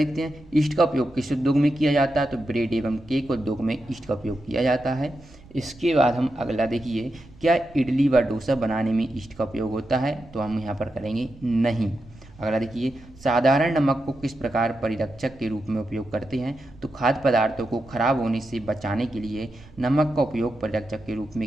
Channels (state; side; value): noise; right; rumble, 22 dB below the sound